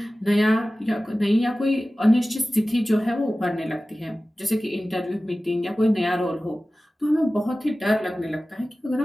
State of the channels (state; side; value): normal; both; correlation 0.96